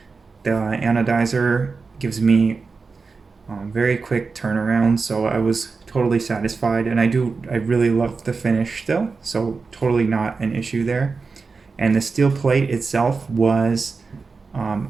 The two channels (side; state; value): left; quieter; 4.5 dB